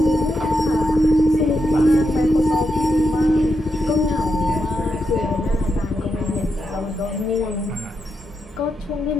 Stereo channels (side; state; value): both; normal; correlation 0.84